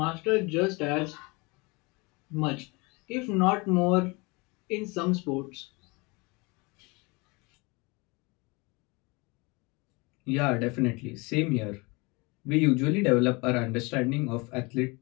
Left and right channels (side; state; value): right; quieter; 26.9 dB